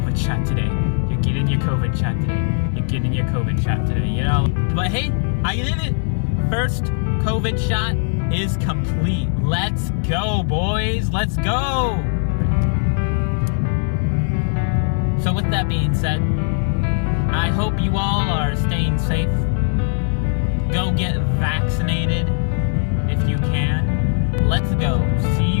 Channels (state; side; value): silent; right; digital silence